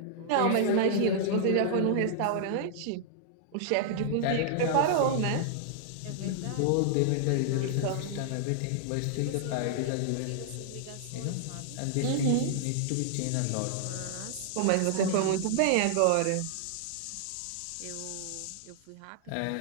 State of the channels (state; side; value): different; both; correlation -0.01